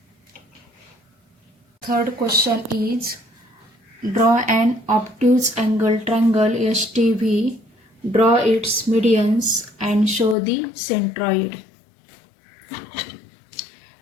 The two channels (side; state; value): right; drops out; at 10.4 s